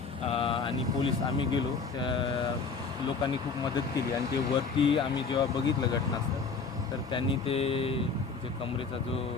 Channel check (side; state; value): right; quieter; 4.8 dB